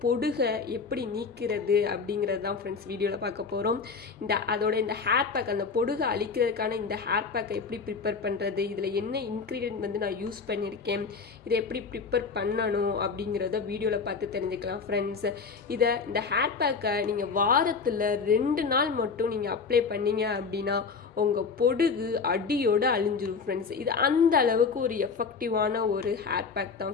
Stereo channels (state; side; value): quieter; right; 5.2 dB